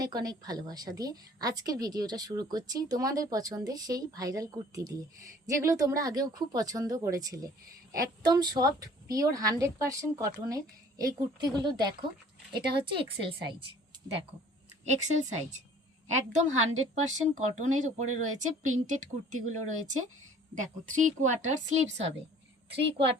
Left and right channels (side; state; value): both; normal; correlation 0.52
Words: অনেক ভালোবাসা দিয়ে আজকের ভিডিওটা শুরু করছি তোমাদের পছন্দের সেই ভাইরাল কুর্তি দিয়ে, যেগুলো তোমরা আগেও খুব পছন্দ করেছিলে। একদম সফট পিওর 100% কটনের এই কুর্তিগুলো দেখো। এটা হচ্ছে এক্সেল সাইজ, দেখো এক্সেল সাইজ, একদম 100% কটনের উপরে রয়েছে। প্রিন্টেড কুর্তিগুলো রয়েছে, দেখো 3/4 স্লিভস হবে,